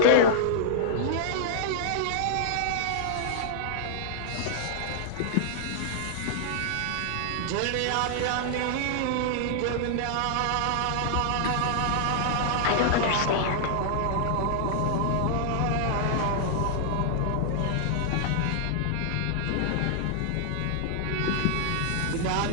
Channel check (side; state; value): both; different; correlation 0.00